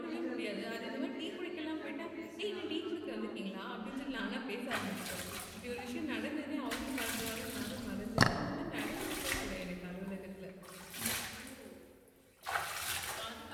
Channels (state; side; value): identical; both; correlation 1.00